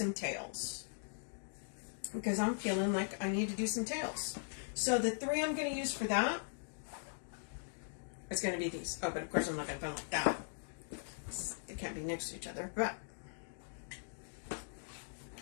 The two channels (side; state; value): right; silent; digital silence